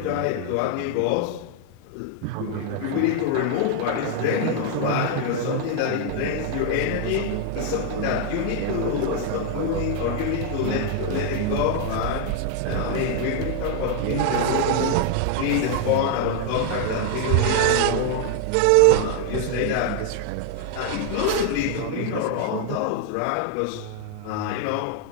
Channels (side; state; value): both; different; correlation 0.00